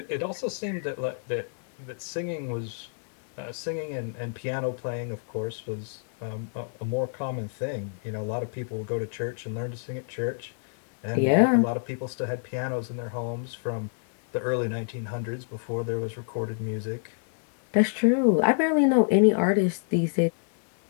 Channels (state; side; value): silent; right; digital silence